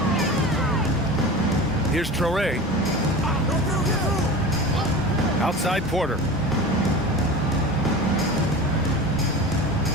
Here's Traore. Outside Porter.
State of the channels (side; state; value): both; normal; correlation 0.32